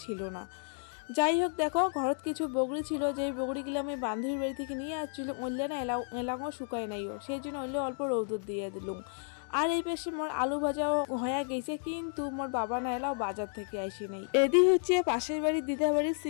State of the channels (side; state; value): right; silent; 56 dB below the other